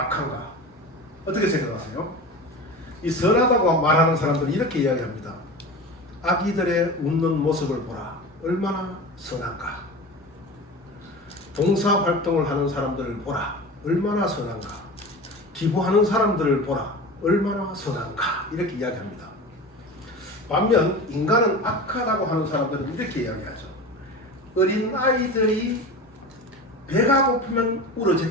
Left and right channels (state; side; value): normal; both; correlation 0.32